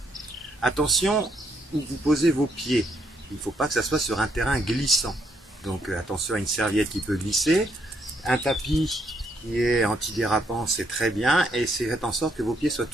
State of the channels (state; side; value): normal; both; correlation 0.73